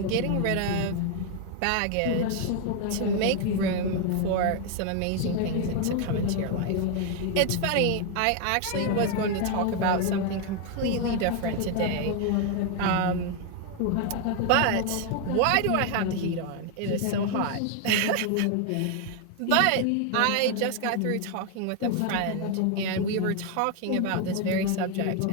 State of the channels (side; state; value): both; different; correlation 0.01